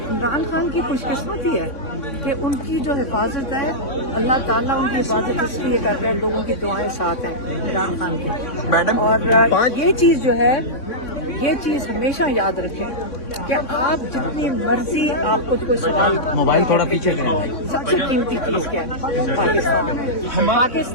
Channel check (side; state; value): right; late; 3.6 ms